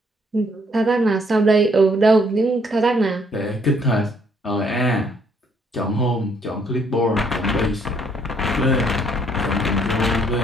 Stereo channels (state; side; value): normal; both; correlation 0.67